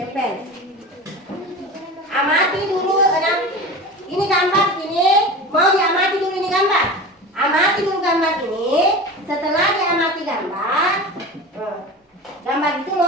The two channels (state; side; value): normal; both; correlation 0.31